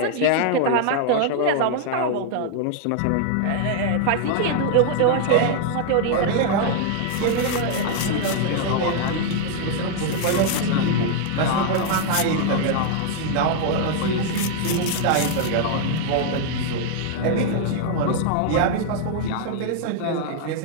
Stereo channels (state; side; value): different; both; correlation 0.00